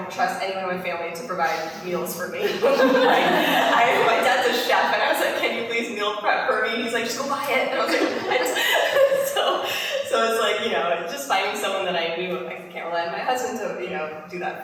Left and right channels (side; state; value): both; identical; correlation 1.00